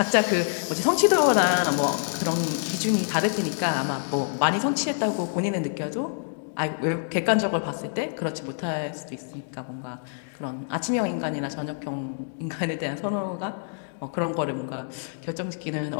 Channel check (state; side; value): silent; right; digital silence